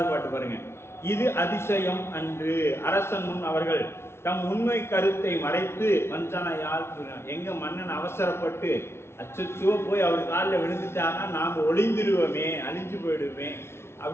பாட்டு பாருங்க. இது அதிசயம் அன்று அரசன் முன் அவர்கள் தம் உண்மை கருத்தை மறைத்து வஞ்சனையால் எங்க மன்னன் அவசரப்பட்டு அச்சோ போய் அவர் காலில் விழுந்துட்டாங்கன்னா நாம் ஒளிந்துருவோமே, அழிஞ்சு போயிடுவோமே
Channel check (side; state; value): right; late; 0.12 ms